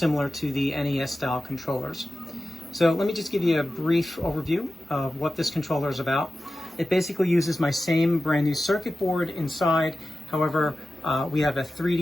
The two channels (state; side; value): normal; both; correlation 0.94